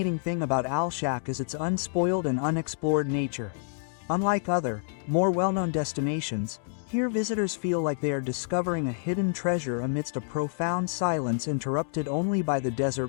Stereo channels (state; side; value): silent; right; digital silence